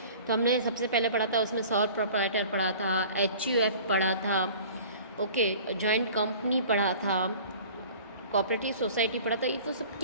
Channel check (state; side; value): inverted; both; correlation -0.45